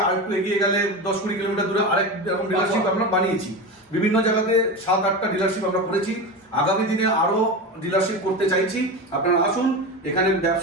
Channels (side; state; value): both; normal; correlation 0.23